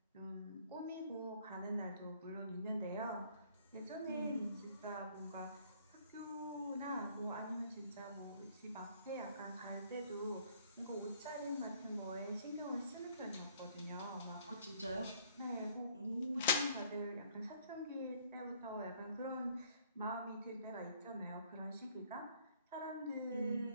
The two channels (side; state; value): both; inverted; correlation -0.61